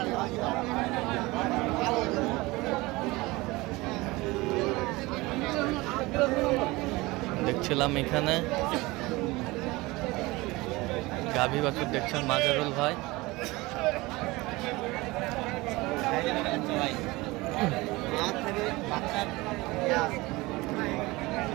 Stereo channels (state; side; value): quieter; left; 21.7 dB